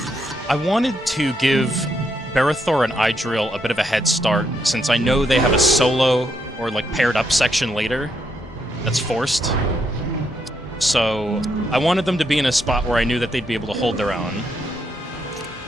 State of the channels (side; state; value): both; normal; correlation 0.77